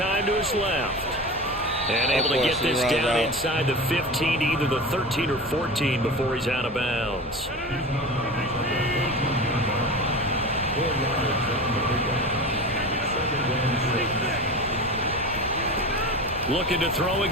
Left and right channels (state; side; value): normal; both; correlation 0.31